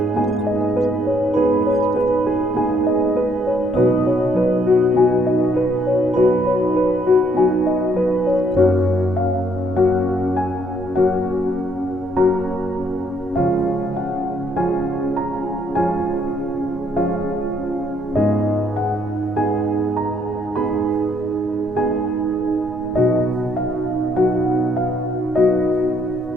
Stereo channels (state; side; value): normal; both; correlation 0.69